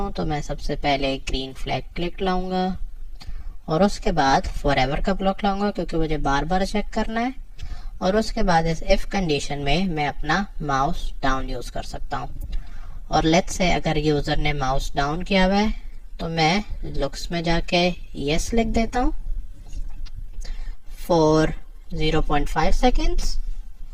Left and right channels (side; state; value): both; identical; correlation 1.00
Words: तो मैं सबसे पहले ग्रीन फ्लैग क्लिक लाऊंगा और उसके बाद फॉरएवर का ब्लॉक लाऊंगा क्योंकि मुझे बार बार चेक करना है। और उसके बाद इस इफ कंडीशन में मैं अपना माउस डाउन यूज कर सकता हूं। और लेट्स से अगर यूजर ने माउस डाउन किया हुआ है तो मैं लुक्स में जाके यस लिख देता हूं फॉर 0.5 सेकेंड्स।